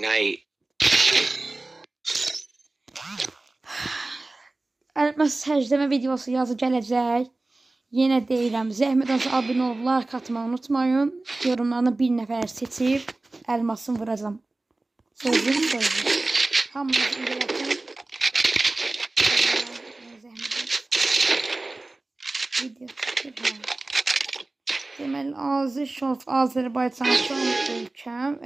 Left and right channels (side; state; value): left; quieter; 3.0 dB